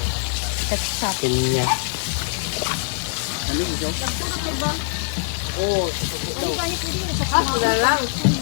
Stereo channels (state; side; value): silent; right; digital silence